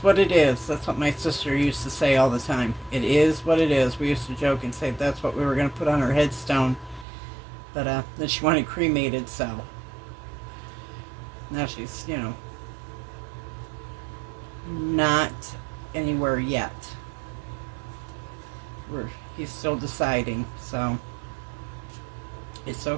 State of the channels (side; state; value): left; drops out; at 7.1 s